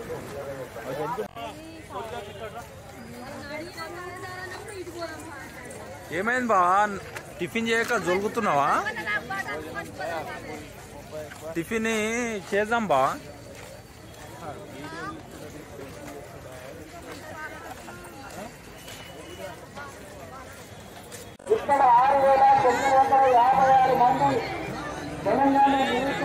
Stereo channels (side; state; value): both; identical; correlation 1.00